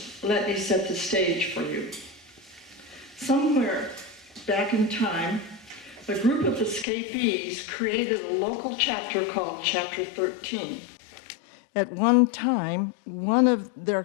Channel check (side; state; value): right; drops out; at 6.9 s